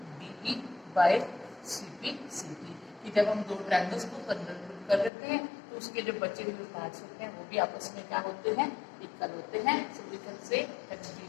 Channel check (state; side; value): drops out; right; at 5.1 s